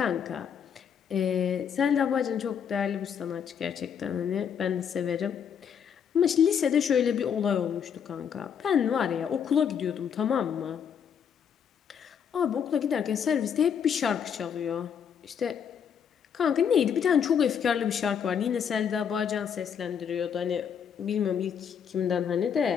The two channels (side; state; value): right; quieter; 7.7 dB